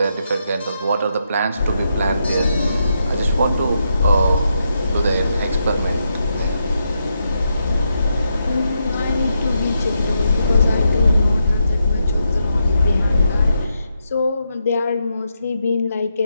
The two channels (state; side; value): inverted; both; correlation -0.82